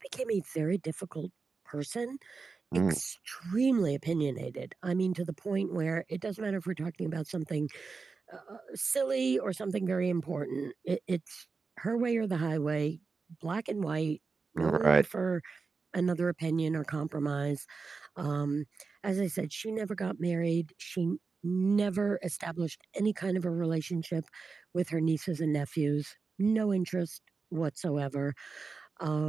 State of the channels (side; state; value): left; quieter; 4.6 dB